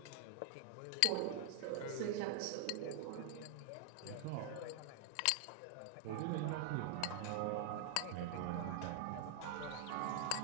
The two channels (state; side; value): different; both; correlation 0.00